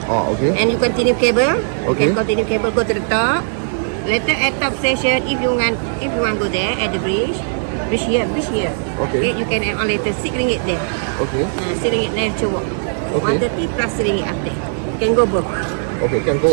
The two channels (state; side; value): silent; left; digital silence